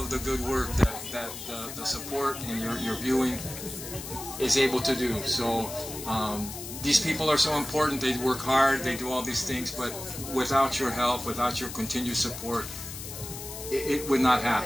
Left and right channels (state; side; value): noise; left; hiss, 10 dB below the sound